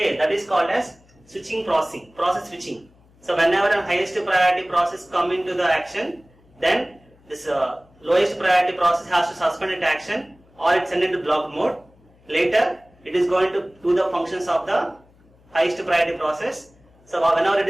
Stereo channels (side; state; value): left; noise; hum, 30 dB below the sound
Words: that is called as switching processing, process switching. So whenever a highest priority process come into the action, then this lowest priority process has to suspend its action or it send into block mode. Later, it is going to do the functions of the highest priority process. So whenever it